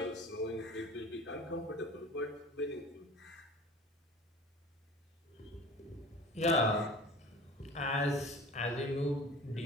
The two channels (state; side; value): normal; both; correlation 0.40